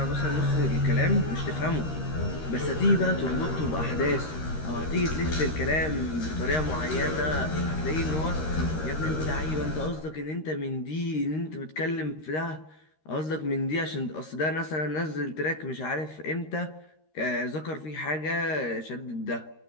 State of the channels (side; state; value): right; late; 13 ms